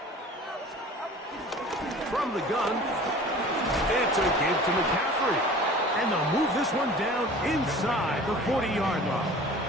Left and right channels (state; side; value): normal; both; correlation 0.43